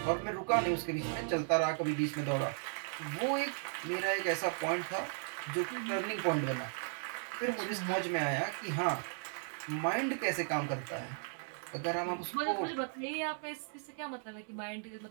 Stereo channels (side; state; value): left; silent; 54 dB below the other